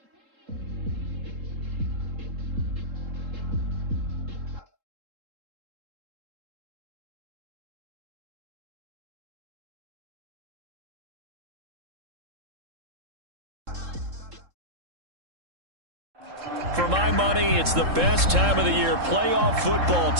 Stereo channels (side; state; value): left; late; 3.7 ms